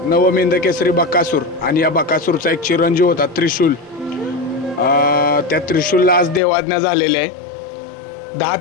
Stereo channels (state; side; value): drops out; right; at 6.4 s